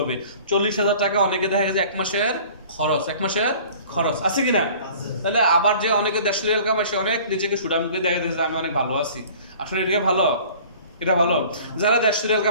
40,000 টাকা অনেকে দেখা গেছে 1 মাসের খরচ, 1 মাসের খরচ আছে কিনা? তাহলে আবার যে অনেকে 150 রিয়াল কামায় সে অনেক নিজেকে সুডামকে দেখা যাচ্ছে আমি অনেক ভালো আছি। আসলে এটা ভালো? এটা ভালো? যারা 150 রিয়াল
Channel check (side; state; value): both; inverted; correlation -0.47